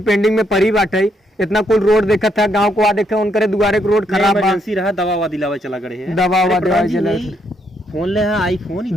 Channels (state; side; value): normal; both; correlation 0.74